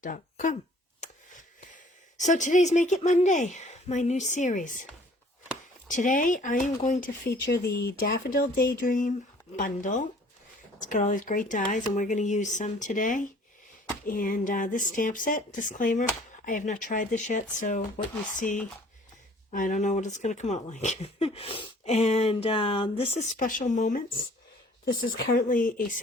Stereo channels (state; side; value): normal; both; correlation 0.54